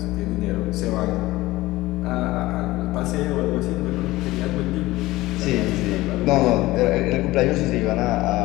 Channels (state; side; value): quieter; right; 18.4 dB